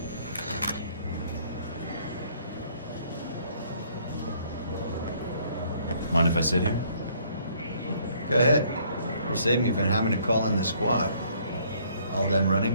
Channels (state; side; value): inverted; both; correlation -0.63